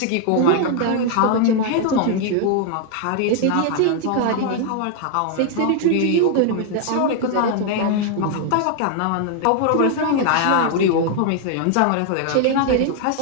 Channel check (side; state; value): both; different; correlation 0.00